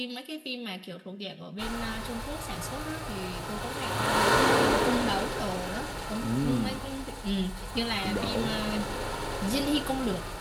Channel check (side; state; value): both; identical; correlation 1.00